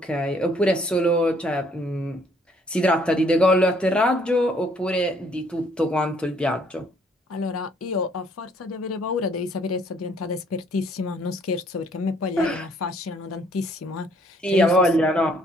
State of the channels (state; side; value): normal; both; correlation 0.64